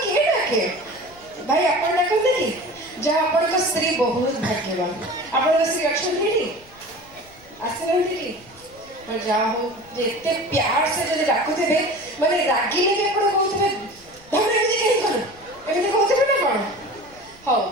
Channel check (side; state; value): left; noise; rumble, 26 dB below the sound